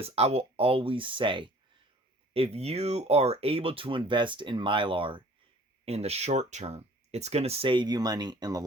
I will always say, if you are able to invest in Mylar in the short term, it's going to save you money in the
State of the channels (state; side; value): normal; both; correlation 0.51